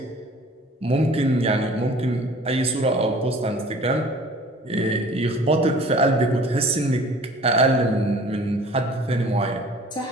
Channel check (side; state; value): both; normal; correlation 0.48